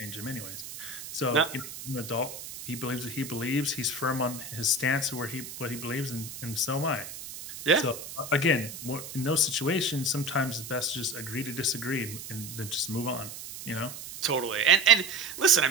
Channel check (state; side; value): noise; right; hiss, 11 dB below the sound